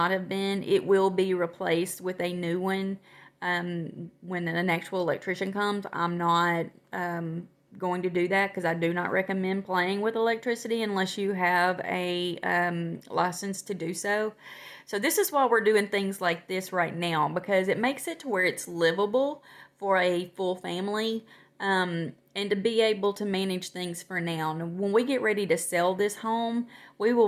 have been. It will be replaced with a new one when an actual electrician comes. I'm not going to do that because I do not recommend playing with electricity unless you have a license to do so. So this is why we're doing things like this right now, because it makes it to where it's livable for a full family. And to be able to manage things for now. And when we get ready to sell this home, we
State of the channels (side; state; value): both; identical; correlation 1.00